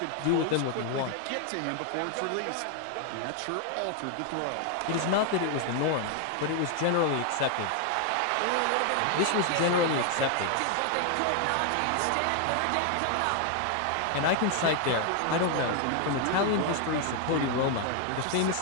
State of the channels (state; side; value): different; both; correlation 0.00